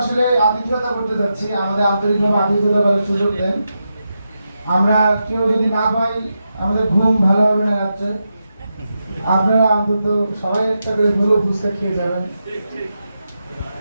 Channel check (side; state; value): both; inverted; correlation -0.87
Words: আসলে আতিথ্যতা করতে যাচ্ছি, আমাদের আন্তরিকভাবে আতিথ্যতা করার সুযোগ দেন। আমরা কেউ যদি না পাই আমাদের ঘুম ভালো হবে না রাত্রে। আপনারা অন্তত সবাই একটা করে ভালো ফুচকা খেয়ে যাবেন।